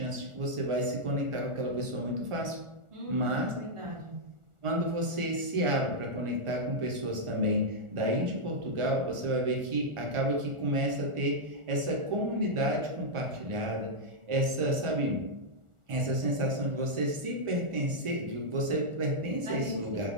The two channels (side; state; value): left; late; 1.4 ms